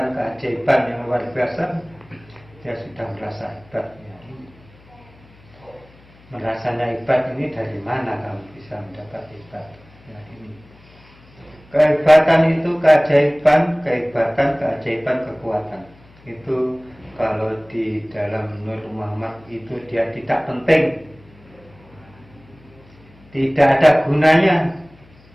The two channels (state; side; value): noise; left; hum, 26 dB below the sound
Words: keajaiban yang luar biasa. Dia sudah merasa hebat. Ya. Merasanya hebat ini dari mana kamu bisa mendapat hebat? Ya, ini. Kehebatan itu keajaiban, keajaiban, kekuatan. Itu kalau di dalam Nur Muhammad itu dia tidak penting, tidak ada gunanya.